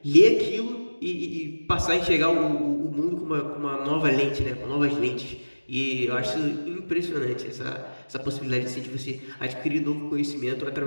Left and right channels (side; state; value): both; inverted; correlation -1.00